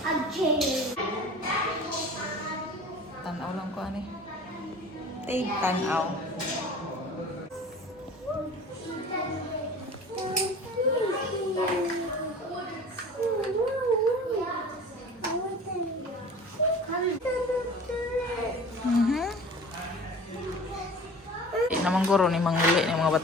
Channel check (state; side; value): normal; both; correlation 0.41